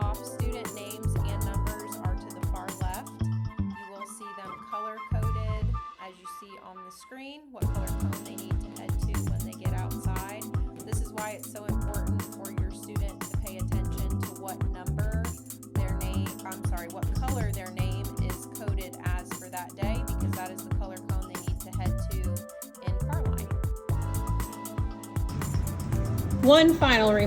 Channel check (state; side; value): identical; both; correlation 1.00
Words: it's so important for your student to pay attention to what number their name, what color their name is coded as for that day, because that is the color cone they need to head to in Carline. One final